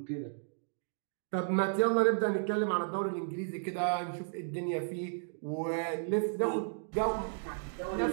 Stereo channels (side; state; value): left; silent; digital silence